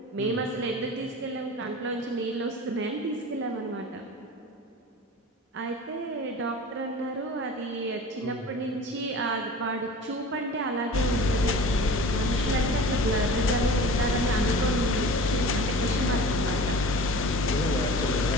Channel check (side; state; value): both; normal; correlation 0.38